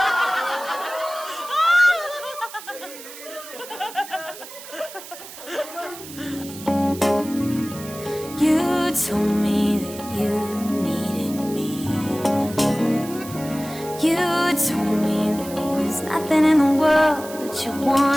You told me that you needed me. You told me there was There's nothing in the world that you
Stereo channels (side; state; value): right; noise; hiss, 14 dB below the sound